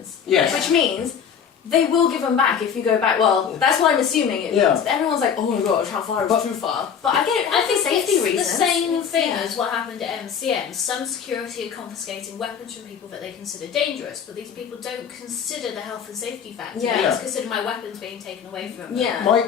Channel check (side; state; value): right; quieter; 7.4 dB